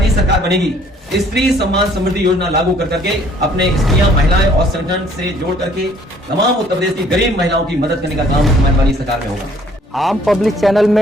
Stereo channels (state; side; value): normal; both; correlation 0.59